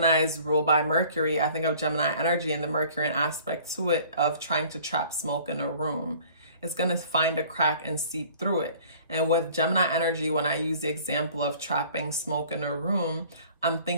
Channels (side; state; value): both; inverted; correlation -0.51